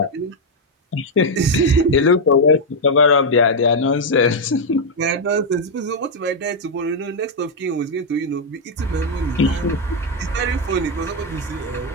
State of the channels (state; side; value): normal; both; correlation -0.01